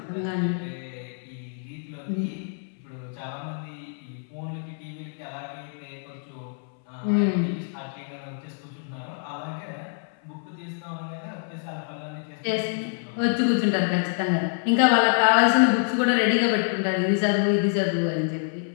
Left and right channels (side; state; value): right; silent; 61 dB below the other